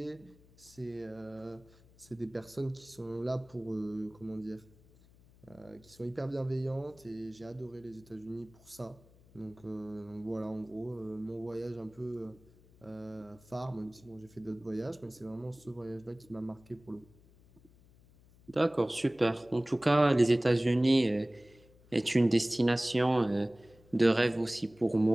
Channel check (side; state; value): left; noise; hum, 26 dB below the sound